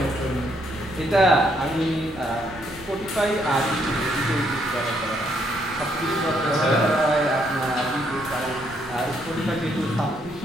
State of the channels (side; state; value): right; noise; rumble, 20 dB below the sound